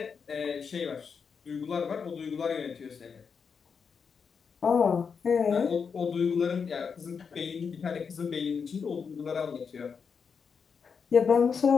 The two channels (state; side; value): quieter; right; 6.0 dB